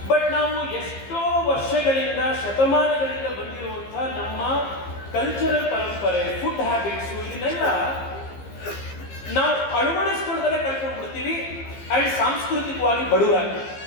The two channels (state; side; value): late; right; 15 ms